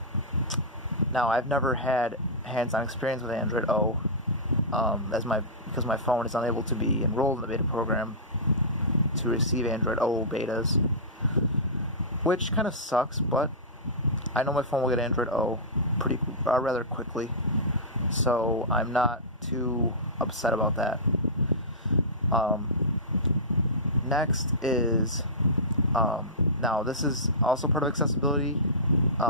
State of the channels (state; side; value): normal; both; correlation -0.17